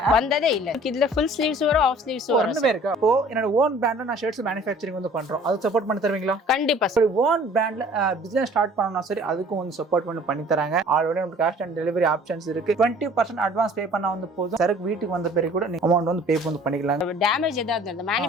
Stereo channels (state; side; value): normal; both; correlation 0.51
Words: வந்ததே இல்ல. இதுல ஃபுல் ஸ்லீவ்ஸ் வரும், ஆஃப் ஸ்லீவ்ஸ் வரும். ரெண்டுமே இருக்கு. அப்போ என்னோட ஓன் பிராண்ட்ல நான் ஷர்ட்ஸ் மேனுஃபேக்சரிங் வந்து பண்றோம். அது சப்போர்ட் பண்ணி தருவீங்களா? கண்டிப்பா சார். ஓன் பிராண்ட்ல பிசினஸ் ஸ்டார்ட் பண்ணனும்னா சரி அதுக்கும் வந்து சப்போர்ட் பண்ணி தராங்க. ஆல்ரெடி நமக்கு கேஷ் ஆன் டெலிவரி ஆப்ஷன்ஸ் இருக்கு. 20% அட்வான்ஸ் பே பண்ணா வந்து போதும். சரக்கு வீட்டுக்கு வந்த பிறகு கூட நீங்க அமௌண்ட் வந்து பே வந்து பண்ணிக்கலாம். டேமேஜ் ஏதாவது இருந்தா